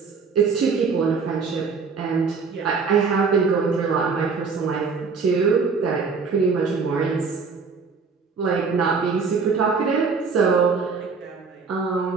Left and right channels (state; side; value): quieter; left; 5.0 dB